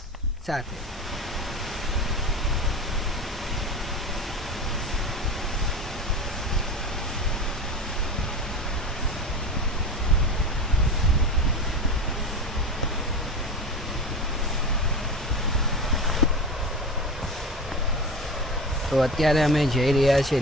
સાથે। તો અત્યારે અમે જઈ રહ્યા છીએ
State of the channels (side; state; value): both; normal; correlation 0.28